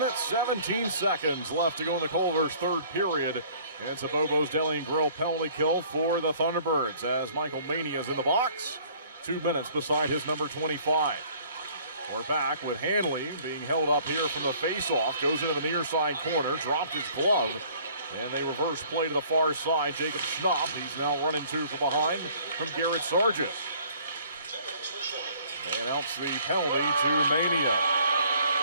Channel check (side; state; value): both; inverted; correlation -0.55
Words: 17 seconds left to go in the Culver's third period. It's a Bobo's Deli and Grill penalty kill for the Thunderbirds as Michael Mania is in the box. 2 minutes beside his number 25. We're back with Hanley being held up here from the face-off. Goes into the near side corner, dropped his glove, and they reverse play to the far side. Jacob Schnapp, he's now running two from behind from Garrett Sargent. They announce the penalty to Mania.